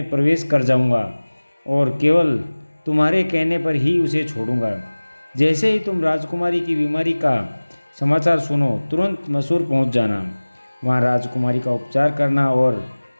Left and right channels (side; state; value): both; inverted; correlation -1.00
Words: प्रवेश कर जाऊंगा और केवल तुम्हारे कहने पर ही उसे छोड़ूंगा। जैसे ही तुम राजकुमारी की बीमारी का समाचार सुनो, तुरंत मसूर पहुंच जाना। वहां राजकुमारी का उपचार करना और